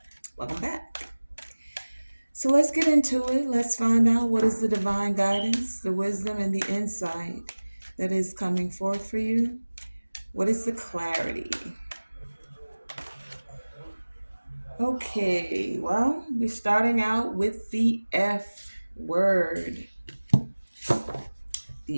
welcome back. So let's get into it. Let's find out what is the divine guidance, the wisdom, and the insight that is coming forth for you. What is the clarity? Okay, well, we're starting out with the F word.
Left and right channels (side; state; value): both; inverted; correlation -1.00